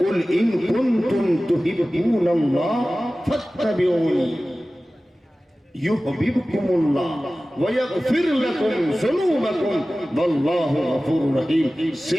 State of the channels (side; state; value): both; normal; correlation 0.96